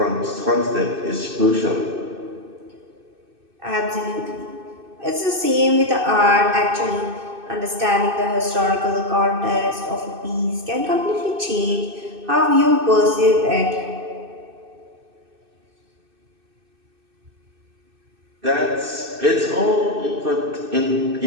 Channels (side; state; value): left; late; 2.6 ms